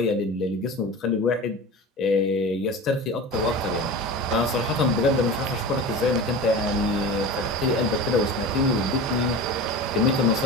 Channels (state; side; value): normal; both; correlation 0.32